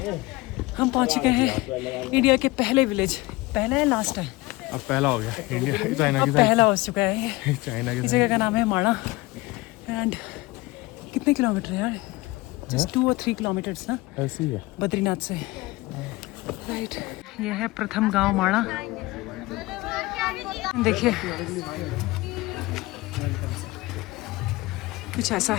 हम पहुंच चुके हैं इंडिया के पहले विलेज। पहला है लास्ट है? अब पहला हो गया इंडिया चाइना अब पहला हो चुका है ये। चाइना की इस जगह का नाम है माणा। एंड कितने किलोमीटर है यार? जस्ट 2 और 3 किलोमीटर्स ना ऐसी है बद्रीनाथ से। राइट, ये है प्रथम गांव माणा। देखिए कुछ ऐसा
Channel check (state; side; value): quieter; right; 21.3 dB